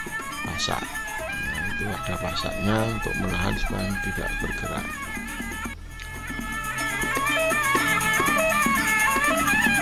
pasak. Nah, itu ada pasaknya untuk menahan supaya tidak bergerak.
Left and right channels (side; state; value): both; identical; correlation 1.00